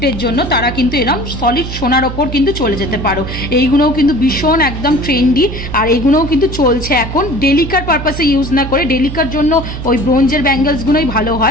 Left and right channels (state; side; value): noise; right; hum, 8 dB below the sound